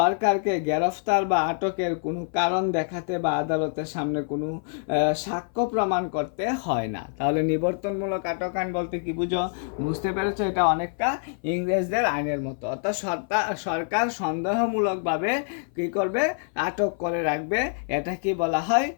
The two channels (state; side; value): silent; right; 57 dB below the other